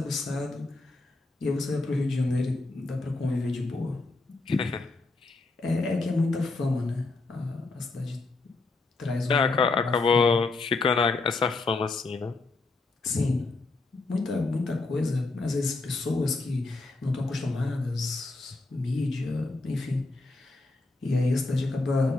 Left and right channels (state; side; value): quieter; right; 3.4 dB